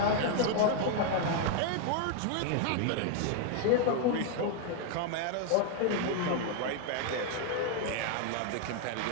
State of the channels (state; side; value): different; both; correlation 0.00